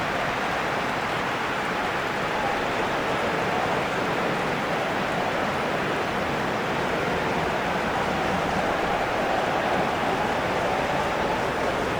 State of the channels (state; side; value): noise; left; hiss, 26 dB below the sound